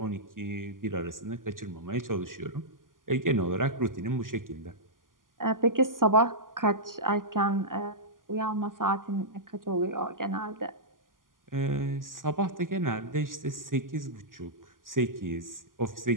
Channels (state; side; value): late; left; 0.90 ms